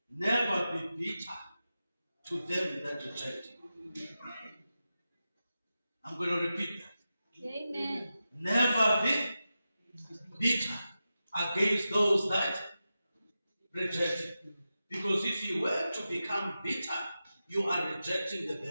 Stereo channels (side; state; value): both; inverted; correlation -0.92